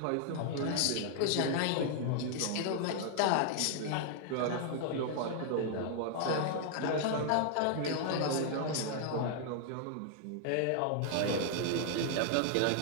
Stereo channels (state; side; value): different; both; correlation 0.00